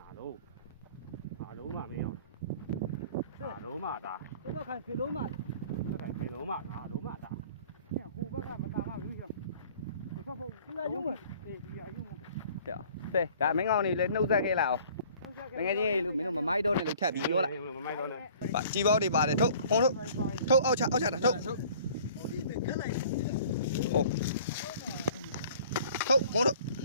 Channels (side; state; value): both; inverted; correlation -0.51